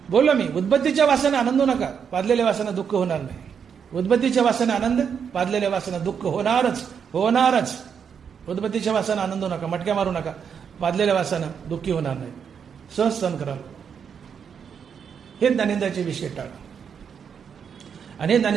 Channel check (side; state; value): left; quieter; 7.1 dB